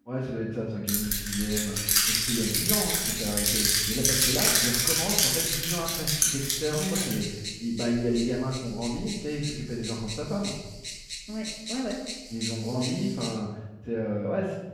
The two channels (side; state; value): both; identical; correlation 1.00